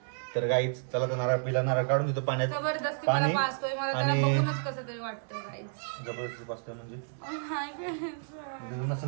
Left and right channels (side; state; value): left; silent; digital silence